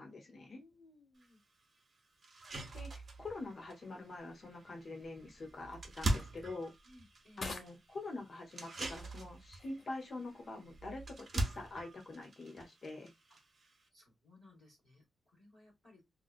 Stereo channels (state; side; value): normal; both; correlation 0.86